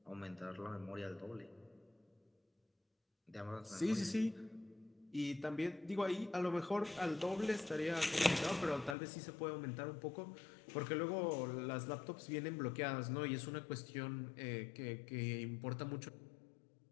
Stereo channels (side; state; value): right; drops out; at 9.0 s